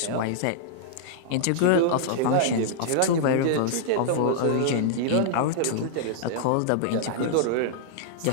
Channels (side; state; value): both; different; correlation -0.02